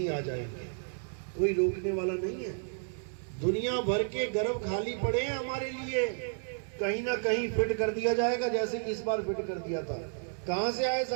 आ जाएंगे। कोई रोकने वाला नहीं है। दुनिया भर के गर्भ खाली पड़े हैं हमारे लिए, कहीं ना कहीं फिट कर दिया जाएगा, जैसे कि इस बार फिट कर दिया था। कहां से आए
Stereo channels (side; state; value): left; silent; digital silence